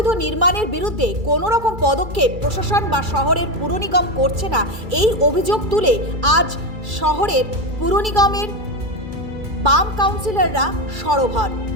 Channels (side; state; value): left; late; 2.3 ms